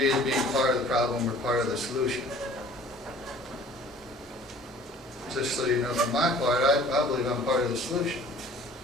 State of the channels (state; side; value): normal; both; correlation 0.50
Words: as being part of the problem or part of the solution. Just so you know, from my part, I believe I'm part of the solution.